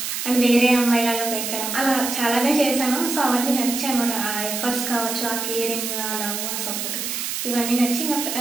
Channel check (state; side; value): noise; right; hiss, 3 dB below the sound